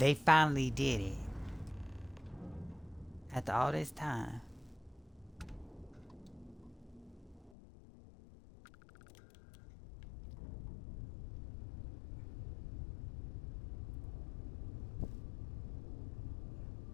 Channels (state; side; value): drops out; right; at 7.5 s